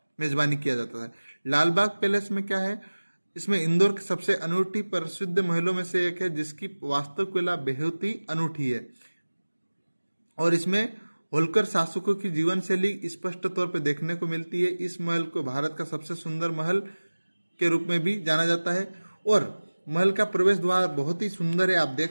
मेजबानी किया जाता था। लाल बाग पैलेस में क्या है? इसमें इंदौर के सबसे अनूठी प्रसिद्ध महलों में से एक है जिसकी वास्तुकला बेहद ही अनूठी है और इसमें होलकर शासकों की जीवन शैली स्पष्ट तौर पर देखने को मिलती है। इस महल को भारत का सबसे सुंदर महल के रूप में भी जाना जाता है और महल का प्रवेश द्वार बहुत ही सुंदर है, आप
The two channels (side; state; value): both; inverted; correlation -1.00